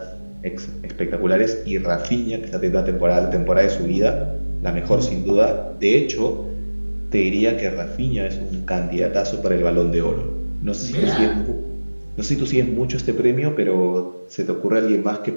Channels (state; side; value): inverted; both; correlation -1.00